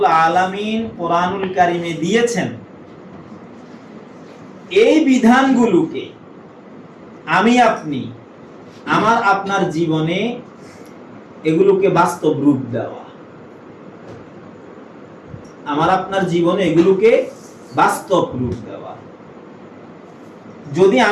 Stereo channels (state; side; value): identical; both; correlation 1.00